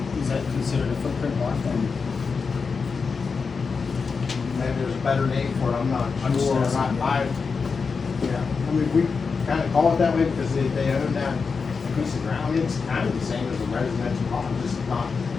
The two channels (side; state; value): right; quieter; 5.1 dB